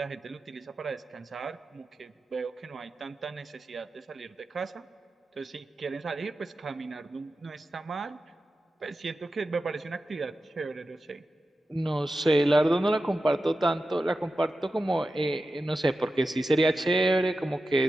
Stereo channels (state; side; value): normal; both; correlation 0.92